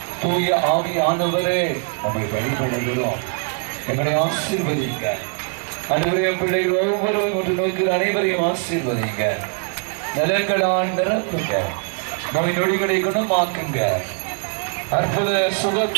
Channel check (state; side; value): quieter; left; 39.4 dB